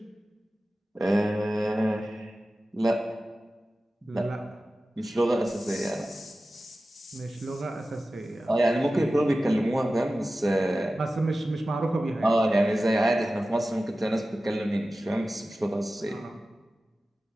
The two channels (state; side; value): normal; both; correlation 0.95